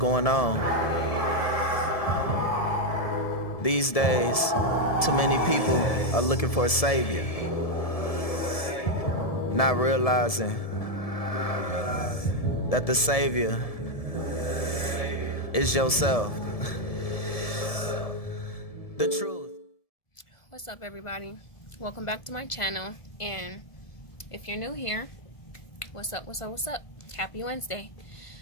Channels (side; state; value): right; late; 1.7 ms